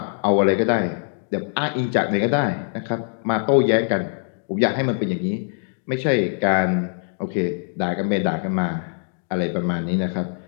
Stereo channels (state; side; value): silent; right; digital silence